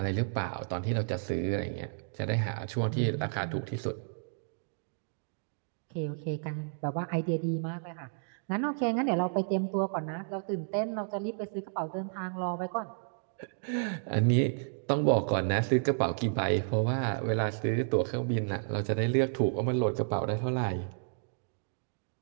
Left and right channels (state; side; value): silent; left; digital silence